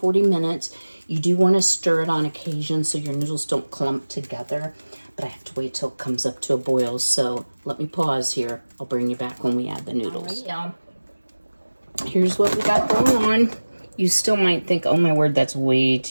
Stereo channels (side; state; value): both; inverted; correlation -1.00